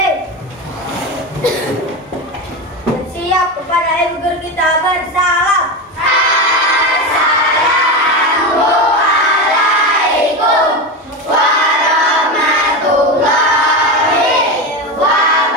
Bersiap kepada ibu guru kita bersalam. Assalamualaikum warahmatullahi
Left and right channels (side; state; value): both; normal; correlation 0.18